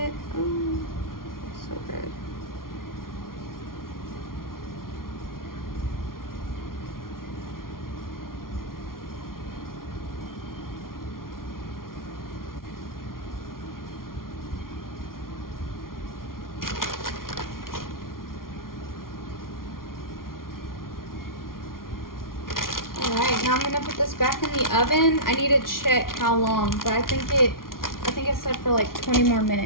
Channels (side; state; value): right; late; 0.92 ms